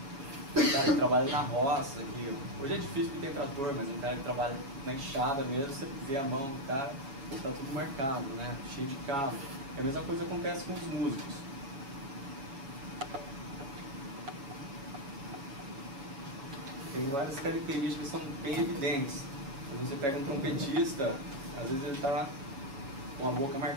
Um cara que trabalha na roça, que hoje é difícil porque tem trator, mas um cara que trabalha na enxada mesmo, você vê a mão do cara, está tudo marcado, né? Cheio de cabo. E a mesma coisa acontece com os músicos. Tem várias características que são bem evidentes. Quando você pega um trompetista, às vezes ele está com a boca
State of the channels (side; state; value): left; late; 7.3 ms